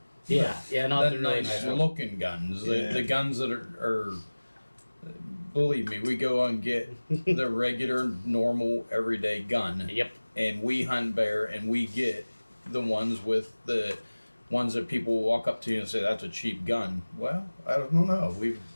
Yeah, not The the really nice nice ones. looking guns. Yeah. The guns that are, believe me, we go and get the regular, normal, everyday gun. Yep. And we hunt bear and we get the ones with the ones that people will walk up to you and say, that's a cheap gun. Well, I don't know. We've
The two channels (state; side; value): inverted; both; correlation -1.00